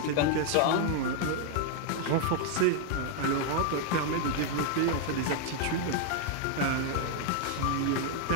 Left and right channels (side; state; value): both; different; correlation 0.00